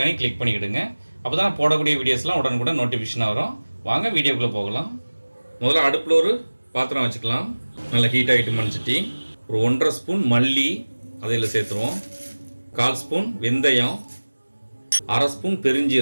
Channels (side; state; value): both; inverted; correlation -1.00